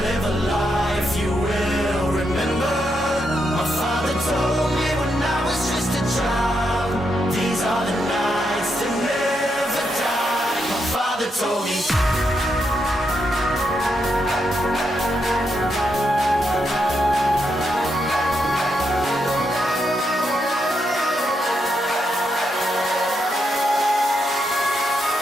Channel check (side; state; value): both; normal; correlation 0.81